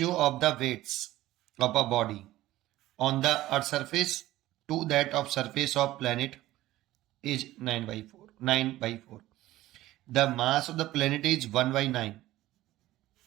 of the weights of a body on the earth surface to that of surface of planet is 9/4. The mass of the planet is 1/9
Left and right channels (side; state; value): left; quieter; 15.9 dB